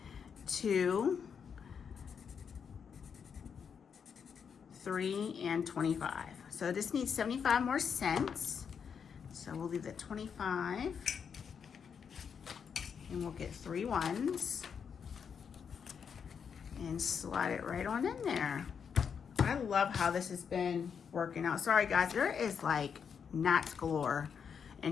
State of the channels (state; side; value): quieter; right; 6.9 dB